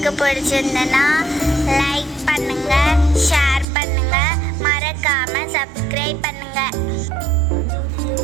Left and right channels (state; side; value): drops out; left; at 3.7 s